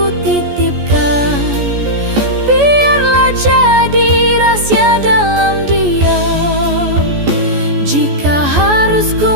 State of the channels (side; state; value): left; late; 14 ms